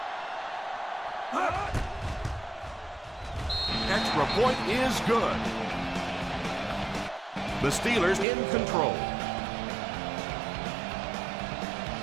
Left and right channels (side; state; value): left; drops out; at 8.2 s